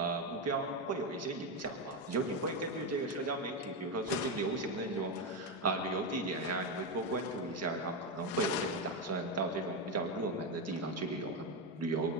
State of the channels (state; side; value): normal; both; correlation 0.10